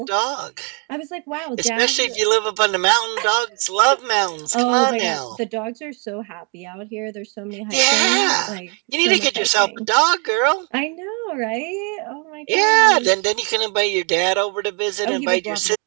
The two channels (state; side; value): quieter; left; 37.0 dB